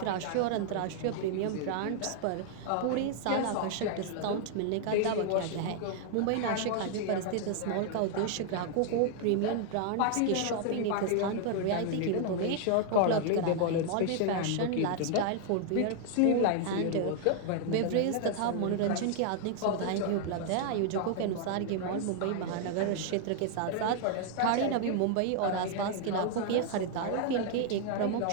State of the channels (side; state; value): both; different; correlation 0.00